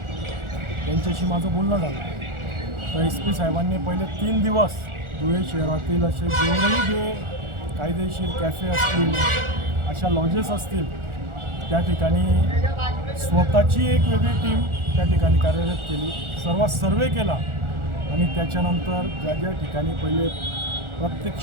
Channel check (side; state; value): left; late; 1.4 ms